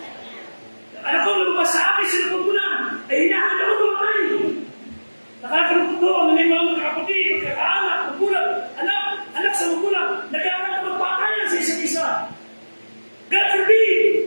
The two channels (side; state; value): both; inverted; correlation -1.00